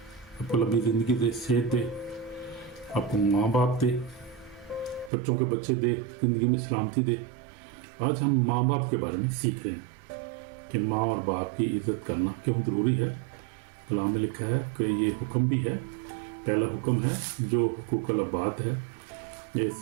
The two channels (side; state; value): left; drops out; at 5.1 s